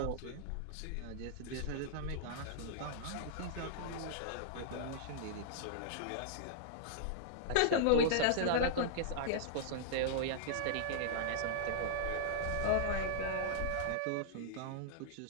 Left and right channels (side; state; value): both; different; correlation -0.01